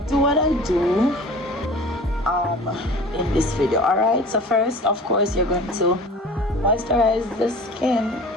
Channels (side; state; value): both; normal; correlation 0.41